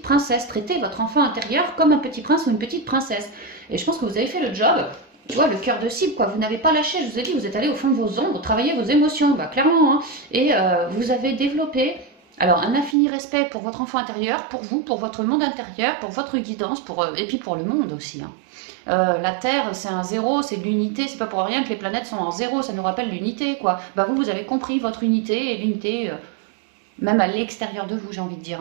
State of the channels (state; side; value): drops out; left; at 13.0 s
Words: princesse. Traitez votre enfant intérieur comme un petit prince ou une petite princesse. Et je pense que vous avez fait le job. Tu vois, le cœur de cible, quoi. Vous n'avez pas lâché, je vous ai dit, vous êtes allé au fond de vos ombres, travailler vos émotions, bah, clairement. Hein. Et vous avez développé alors un infini respect pour votre enfant intérieur, pour vous, pour votre monde intérieur, pour votre guidance, et puis pour le monde aussi. Hein. La Terre, c'est un zéro, c'est de l'unité, c'est pas pour rien que les planètes sont en zéro, ça nous rappelle l'unité, quoi. Bah vous avez compris votre unité, et l'unité, même à l'extérieur de vous, j'ai envie de dire.